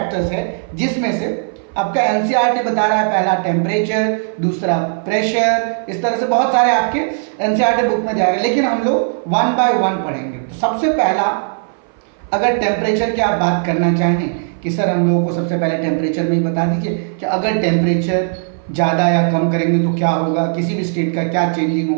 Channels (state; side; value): silent; left; 60 dB below the other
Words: हैं जिसमें से आपका एनसीईआरटी बता रहा है पहला टेम्परेचर, दूसरा प्रेशर, इस तरह से बहुत सारे आपके एनसीईआरटी बुक में जाएगा, लेकिन हम लोग वन बाय वन पढ़ेंगे। तो सबसे पहला अगर टेम्परेचर की आप बात करना चाहें कि सर हम लोगों को सबसे पहले टेम्परेचर में ही बता दीजिए कि अगर टेम्परेचर ज़्यादा या कम करेंगे तो क्या होगा, किसी भी स्टेट का क्या चेंजिंग